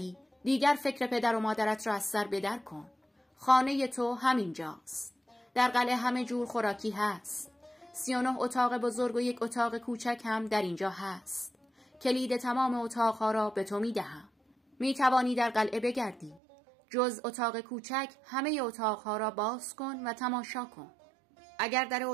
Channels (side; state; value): left; drops out; at 16.4 s